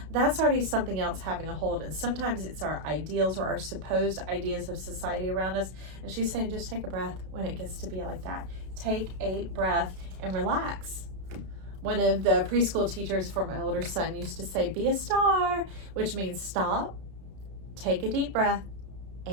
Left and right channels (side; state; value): left; late; 32 ms